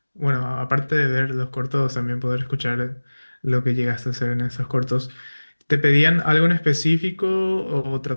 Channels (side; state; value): both; inverted; correlation -1.00